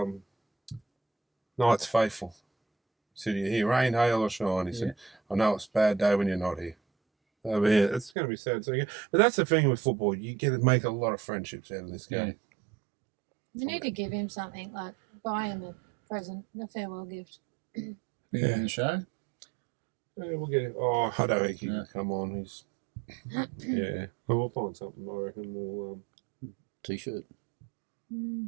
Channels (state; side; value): drops out; left; at 8.1 s